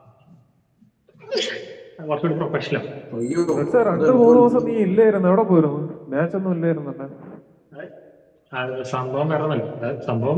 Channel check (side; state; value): both; identical; correlation 1.00